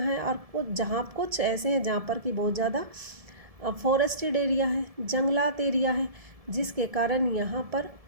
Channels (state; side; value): late; left; 1.7 ms